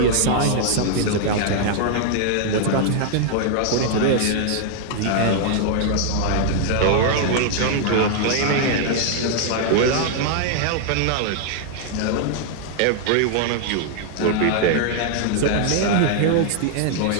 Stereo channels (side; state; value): both; different; correlation 0.00